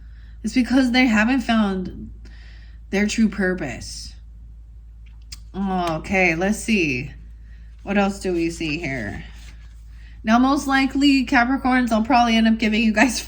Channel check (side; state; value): both; identical; correlation 1.00